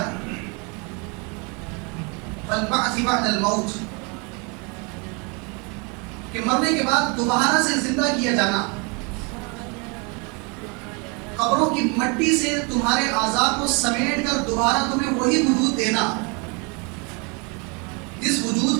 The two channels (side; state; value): left; quieter; 31.9 dB